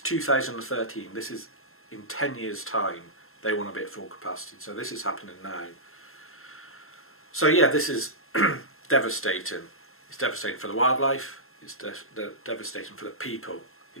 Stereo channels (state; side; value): late; right; 0.62 ms